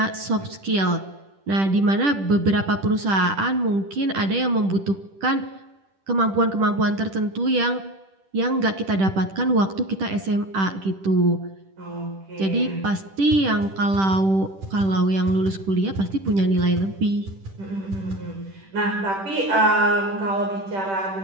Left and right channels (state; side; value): late; left; 10 ms